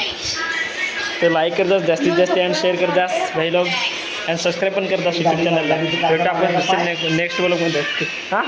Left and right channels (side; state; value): both; identical; correlation 1.00